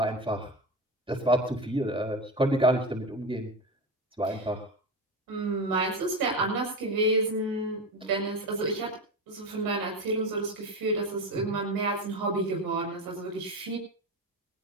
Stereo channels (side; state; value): both; normal; correlation 0.21